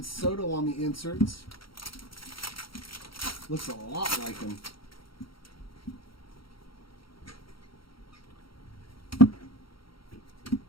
Soto on the inserts. Looks a lot like him.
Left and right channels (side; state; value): right; late; 0.74 ms